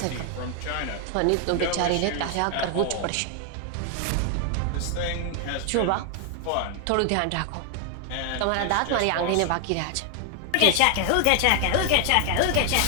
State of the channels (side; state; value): both; different; correlation 0.00